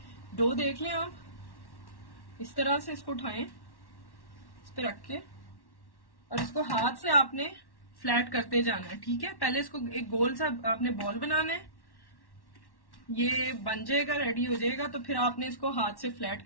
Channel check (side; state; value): right; late; 1.1 ms